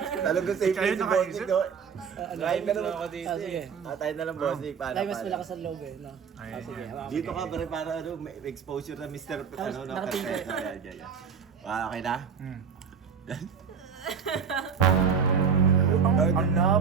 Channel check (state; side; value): quieter; left; 6.5 dB